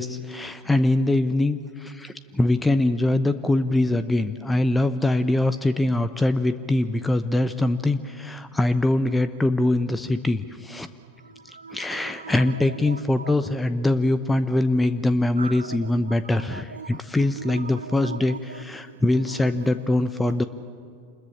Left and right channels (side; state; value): both; normal; correlation 0.91